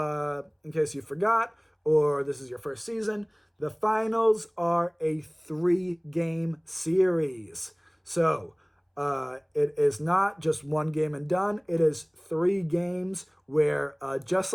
forgot, or this is your first season, the finals are a 3-game series. So it is not just one game and done. It is 3 games where, just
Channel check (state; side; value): identical; both; correlation 1.00